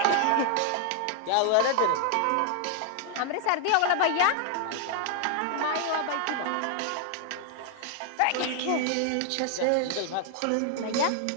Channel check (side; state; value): both; different; correlation 0.00